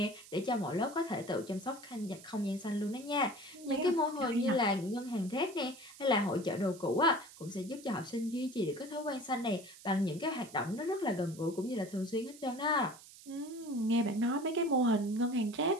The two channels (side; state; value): right; noise; hiss, 19 dB below the sound